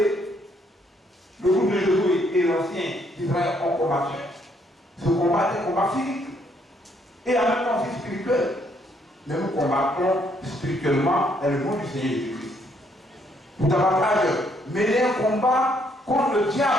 le groupe de Josué et l'ancien d'Israël ont combattu. Ce combat est un combat physique et en même temps aussi spirituel. Mais nous combattons spirituellement dans le nom du Seigneur Jésus-Christ. Pour davantage mener un combat contre le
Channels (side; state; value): both; normal; correlation 0.70